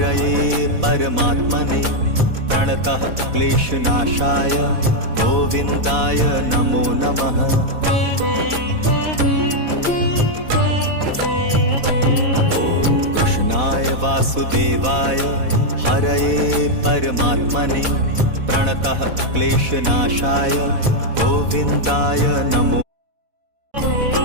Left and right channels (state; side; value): late; left; 4.1 ms